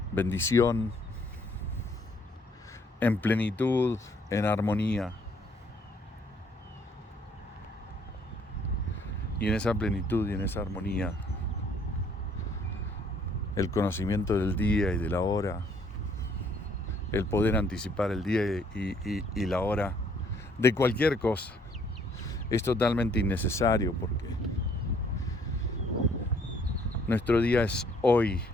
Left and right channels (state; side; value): normal; both; correlation 0.64